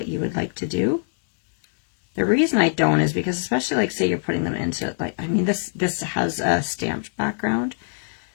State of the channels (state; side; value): silent; right; digital silence